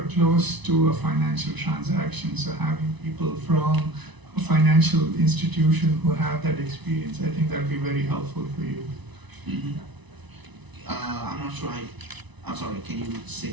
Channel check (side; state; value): left; late; 1.0 ms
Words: close to a financial transaction. So having people from a financial institution who have that experience, I think that'd be very helpful for you. Mm-hmm. I'm not sure. I'm sorry. Can you say